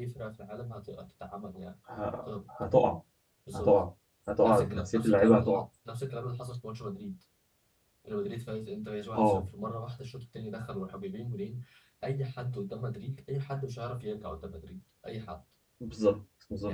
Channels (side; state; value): both; identical; correlation 1.00